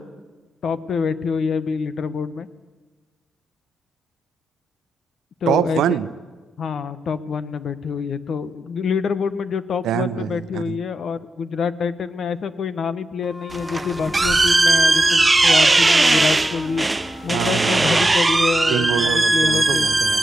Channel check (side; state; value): both; normal; correlation 0.86